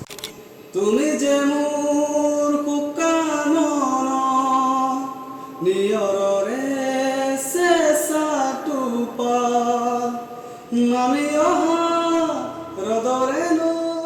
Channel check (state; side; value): identical; both; correlation 1.00